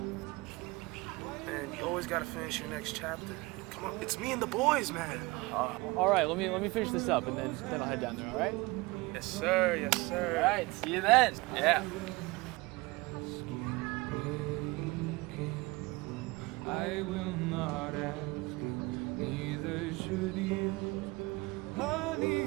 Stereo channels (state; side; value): quieter; left; 23.2 dB